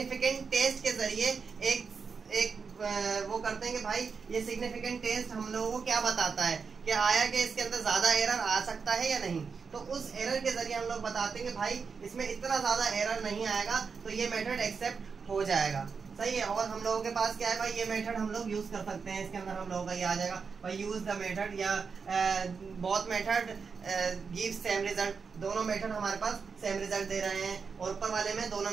टेस्ट के जरिए एक वो करते हैं कि भाई ये सिग्निफिकेंट टेस्ट हम लोगों को क्या बताता है कि आया कि इसके अंदर ज्यादा एरर आ सकता है या नहीं। तो उस एरर के जरिए हम लोग बताते हैं कि भाई इसमें इतना ज्यादा एरर नहीं आएगा, तो ये मेथड एक्सेप्ट हो जाएगा, सही है। और हम लोगों के पास क्या है भाई, ये मेथड हम लोग यूज कर सकते हैं, इसके अंदर हम लोगों का ये आ जाएगा भाई यूज द मेथड या both method give same result. दोनों मेथड हमारे पास सेम रिजल्ट दे रहे हैं, और ऊपर वाले में दोनों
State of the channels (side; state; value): left; quieter; 5.5 dB